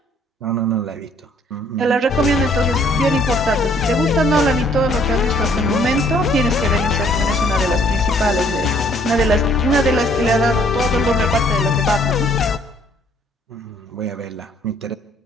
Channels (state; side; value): normal; both; correlation 0.62